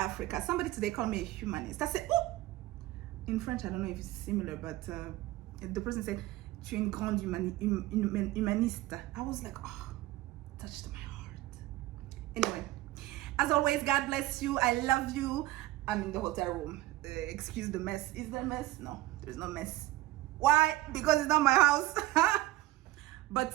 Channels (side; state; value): left; quieter; 17.3 dB